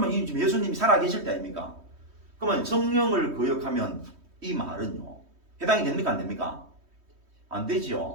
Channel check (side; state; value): left; late; 3.2 ms